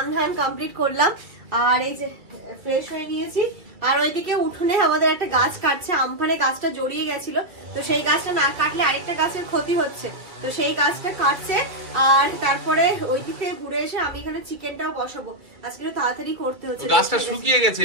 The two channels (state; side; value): late; left; 2.3 ms